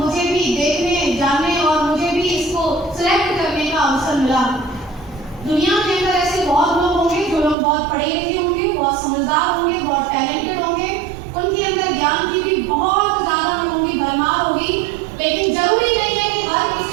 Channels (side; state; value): left; drops out; at 7.6 s